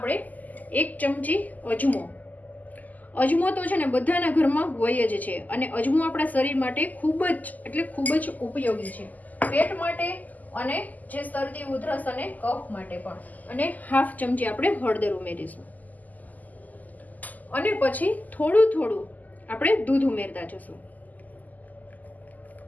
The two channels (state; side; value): late; right; 0.080 ms